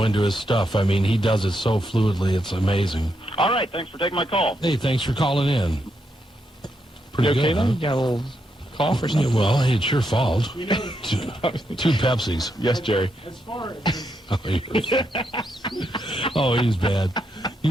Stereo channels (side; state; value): both; normal; correlation 0.81